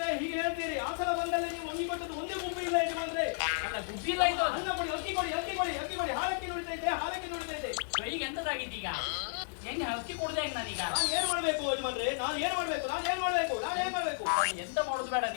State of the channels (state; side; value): silent; right; digital silence